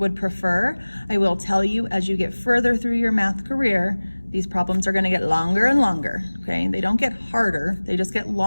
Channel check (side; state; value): both; inverted; correlation -1.00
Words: prefer. I will tell you, as you get further through your math career, these problems are going to get longer and longer, okay? They don't get harder, they just get